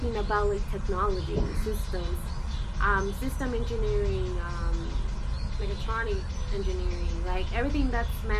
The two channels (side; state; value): both; identical; correlation 1.00